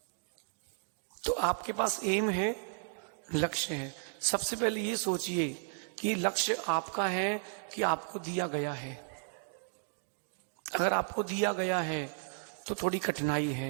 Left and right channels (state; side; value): silent; left; digital silence